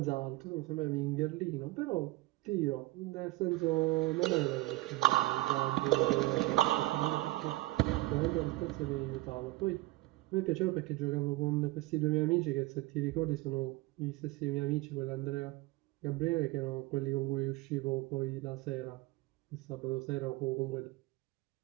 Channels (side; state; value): left; quieter; 19.7 dB